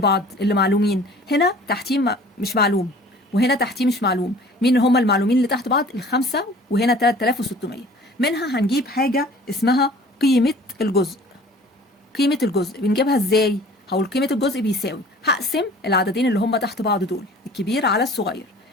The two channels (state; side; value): normal; both; correlation 0.48